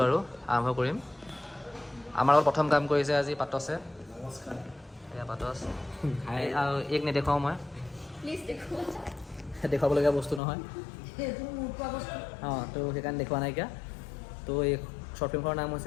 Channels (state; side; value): drops out; right; at 10.4 s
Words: আৰু আৰম্ভ কৰিম আমাৰ লগত প্ৰথম কাম কৰিছে আজি পাতছে এয়া পাতছ আৰু এক নেদেখাওঁ মই দেখুৱাবলগীয়া বস্তু নহয় তো সেইকাৰণে দেখুওৱা নাইকিয়া তো এই শ্বৰ্ট ফিল্মখনৰ নাম